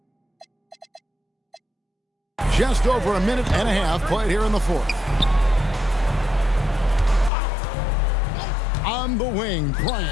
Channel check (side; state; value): right; drops out; at 7.3 s